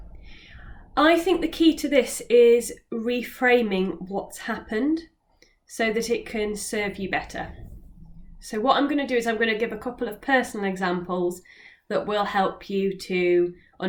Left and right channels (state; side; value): identical; both; correlation 1.00